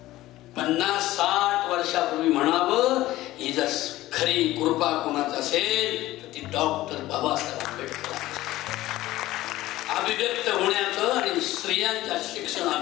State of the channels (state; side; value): quieter; right; 16.3 dB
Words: 50-60 वर्षापूर्वी म्हणावं. ही जर खरी कृपा कोणाच असेल तर ती डॉक्टर बाबासाहेब आंबेडकर. अभिव्यक्त होण्याचं आणि स्त्रियांच्या